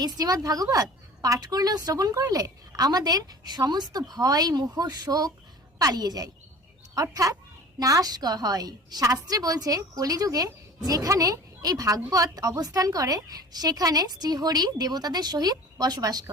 শ্রীমদ্ ভাগবত পাঠ করলেও শ্রবণ করলে আমাদের সমস্ত ভয় মোহ শোক পালিয়ে যায়, অর্থাৎ নাশ হয়। শাস্ত্রে বলছে কলিযুগে যেখানে এই ভাগবত অবস্থান করে সেখানে শ্রীহরি দেবতাদের সহিত বসবাস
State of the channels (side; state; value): both; normal; correlation 0.42